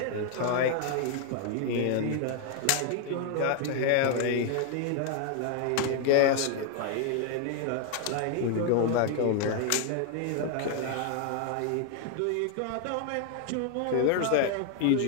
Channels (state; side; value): different; both; correlation 0.00